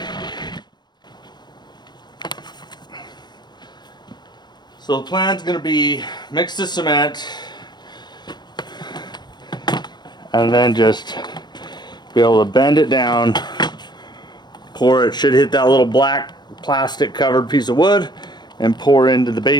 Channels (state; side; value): late; right; 0.21 ms